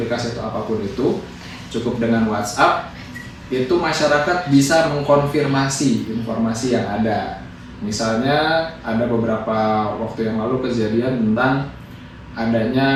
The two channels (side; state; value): both; identical; correlation 1.00